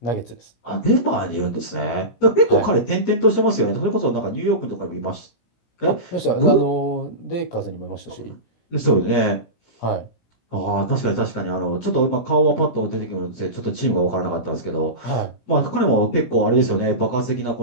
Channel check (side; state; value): right; late; 17 ms